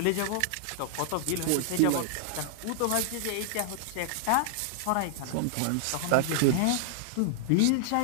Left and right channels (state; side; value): different; both; correlation -0.01